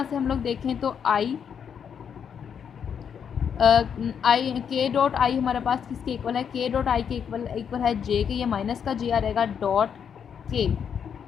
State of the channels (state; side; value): quieter; right; 7.6 dB